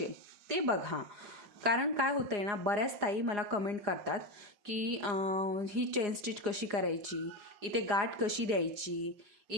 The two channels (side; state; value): left; late; 4.8 ms